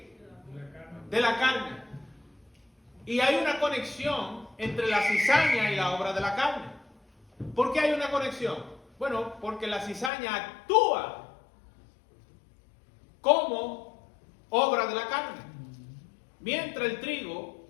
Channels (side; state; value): right; drops out; at 10.1 s